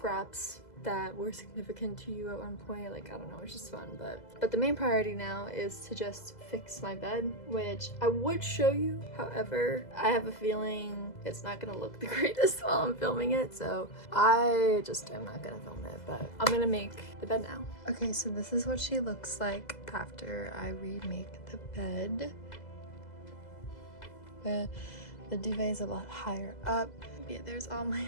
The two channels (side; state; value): right; late; 2.0 ms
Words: that were significant to you at one point. Like, I don't know, it's just fun. But the main priority now is to just fix my bed, which I would show you. However, I have a feeling it's not gonna look the greatest while I'm filming it, so I just am not gonna film it. But I'm gonna make the bed now. Okay, so this is what she looks like after I remake the bed. The duvet is a lot higher up. Yeah, there's all my